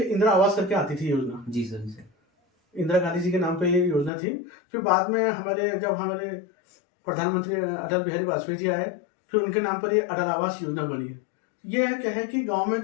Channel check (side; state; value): right; drops out; at 4.1 s